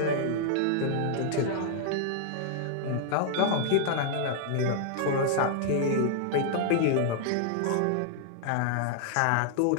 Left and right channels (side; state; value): both; different; correlation -0.01